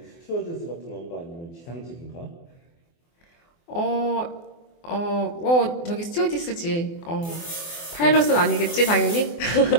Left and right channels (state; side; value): late; right; 24 ms